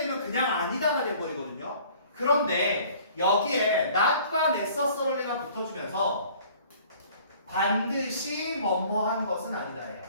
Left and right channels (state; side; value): inverted; both; correlation -0.53